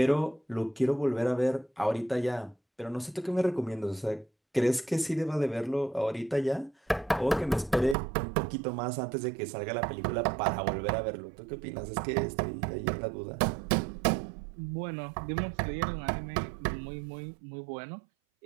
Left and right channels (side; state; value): left; drops out; at 8.0 s